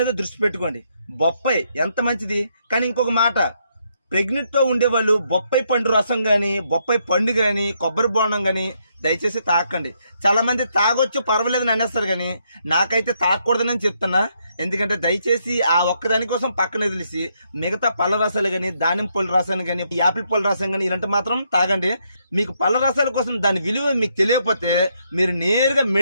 మీద దృష్టి పెట్టుకోండి. బొప్పాయి ఎంత మంచిది. కానీ ఇంకొక మాట, ప్రెగ్నెంట్తో ఉండేవాళ్ళు బొప్పాయి పండు రసం కానీ బొప్పాయి పండు కానీ కొబ్బరి బోండం కానీ దయచేసి తాకండి. చాలా మంది తాగొచ్చు పర్వాలేదని అనేస్తారు, కానీ నాకైతే తాగకూడదని చెప్తున్నా. ఎందుకంటే దయచేసి ఆ ఒక్కదాని కోసం పక్కన వదిలేసి మిగతా పళ్ళ రసాలు కానీ దానిమ్మ పళ్ళ రసాలు కానీ యాపిల్ పళ్ళ రసం కానీ ఇలాంటి మాత్రం తాగండి. మీకు పళ్ళ రసాల కోసం దాని విలువ మీకు తెలియకపోతే మీరు నేరుగా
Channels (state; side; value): inverted; both; correlation -0.75